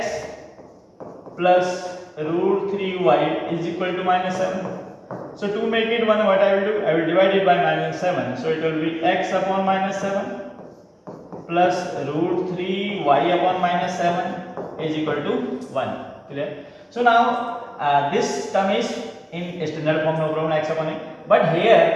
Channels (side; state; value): both; identical; correlation 1.00